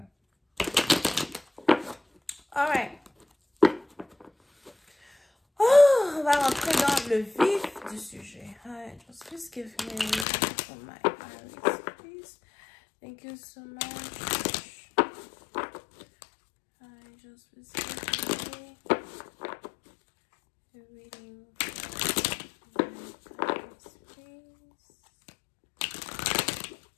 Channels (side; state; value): right; drops out; at 10.2 s